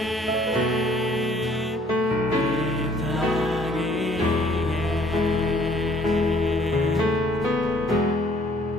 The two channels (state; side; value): normal; both; correlation 0.60